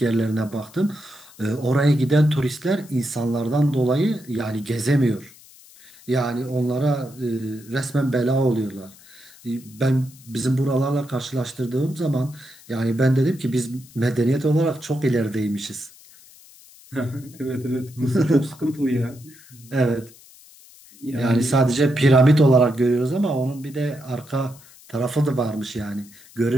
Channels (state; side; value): noise; left; hiss, 23 dB below the sound